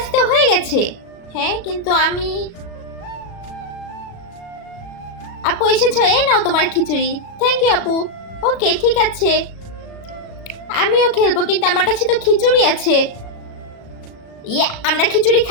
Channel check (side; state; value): right; late; 37 ms